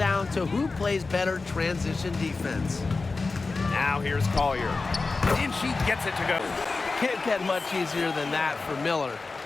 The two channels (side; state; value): right; quieter; 3.9 dB